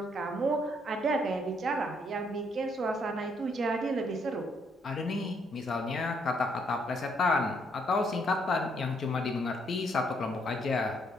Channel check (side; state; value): both; normal; correlation 0.71